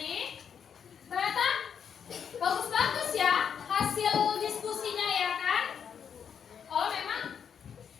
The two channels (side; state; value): right; quieter; 7.6 dB